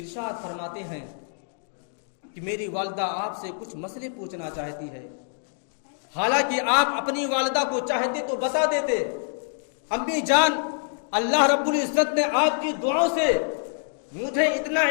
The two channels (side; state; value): right; silent; digital silence